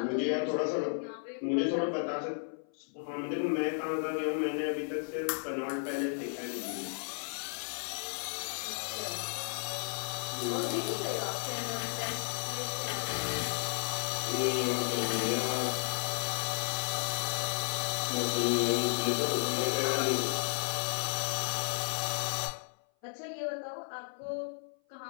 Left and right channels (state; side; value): silent; right; 55 dB below the other